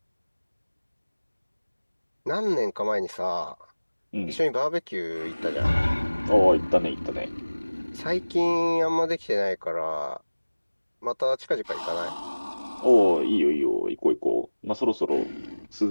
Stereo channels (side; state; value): both; inverted; correlation -1.00